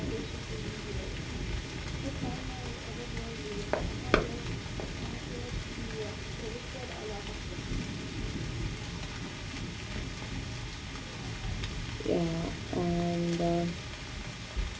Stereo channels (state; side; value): identical; both; correlation 1.00